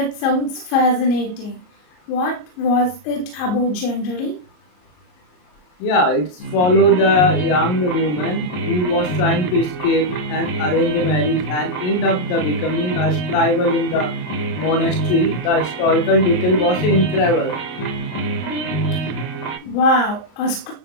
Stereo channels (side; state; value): right; late; 33 ms